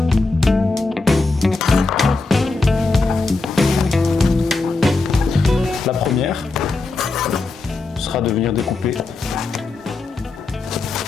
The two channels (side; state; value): right; quieter; 3.6 dB